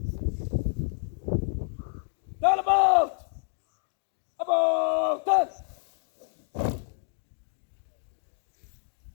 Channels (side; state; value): right; silent; digital silence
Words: Stand about. About, stand.